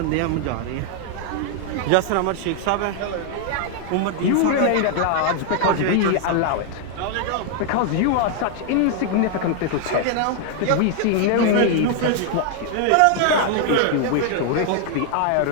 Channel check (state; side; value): different; both; correlation 0.00